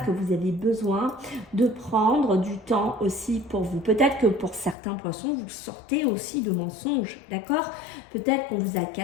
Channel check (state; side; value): drops out; right; at 4.8 s